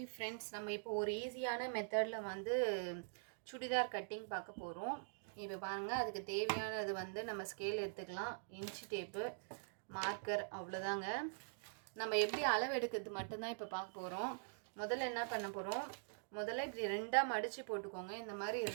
ஃப்ரெண்ட்ஸ், நம்ம இப்போ ஒரு ஈஸியான மெத்தடில் வந்து சுடிதார் கட்டிங் பார்க்க போகிறோம். இப்போ பாருங்கள், அதுக்கு தேவையானது வந்து நம்ம ஸ்கேல் எடுத்துக்கலாம், இன்ச்சு டேப்பு, மார்க்கர், அவ்வளோதாங்க. நம்ம எப்படி அளவு எடுக்கிறது மட்டும்தான் இப்போ பார்க்க போகிறோம். முதல்ல என்ன பண்ண போகிறோம், முதல்ல இப்படி ரெண்டாக மடித்து போட்டுக்கோங்க. இந்த மாதிரி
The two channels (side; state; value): left; silent; digital silence